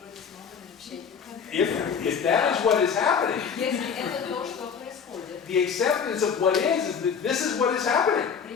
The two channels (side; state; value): right; quieter; 6.7 dB